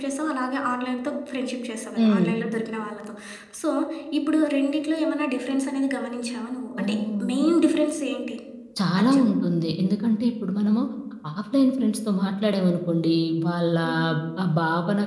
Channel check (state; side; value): identical; both; correlation 1.00